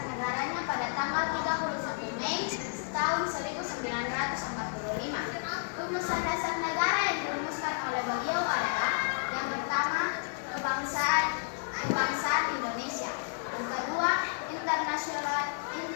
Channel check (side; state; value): right; silent; digital silence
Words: negaranya pada tanggal 31 Mei tahun 1945. Rumusan dasar negara yang dirumuskan oleh beliau adalah yang pertama, kebangsaan Indonesia. Yang kedua,